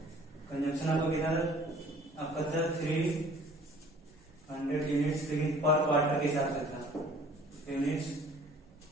कंजम्पशन आपको कितना आपका था 300 यूनिट्स, लेकिन पर क्वार्टर के हिसाब से था, यूनिट्स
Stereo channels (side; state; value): both; normal; correlation 0.52